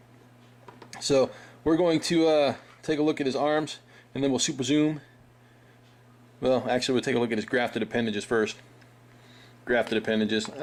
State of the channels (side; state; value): both; identical; correlation 1.00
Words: So we're going to take a look at his arms, and then we'll super zoom. Well, actually, we'll take a look at his grafted appendages first. Grafted appendages.